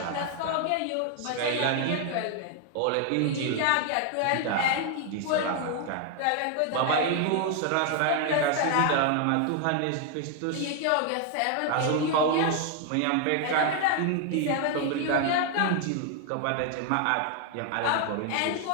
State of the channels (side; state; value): both; different; correlation 0.00